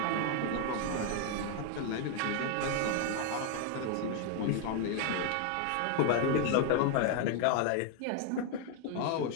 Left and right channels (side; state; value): both; different; correlation 0.00